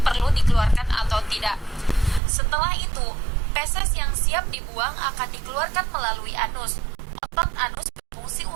perlu dikeluarkan atau tidak. Setelah itu, feses yang siap dibuang akan dikeluarkan melalui anus. Otot anus berfungsi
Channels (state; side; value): drops out; left; at 2.2 s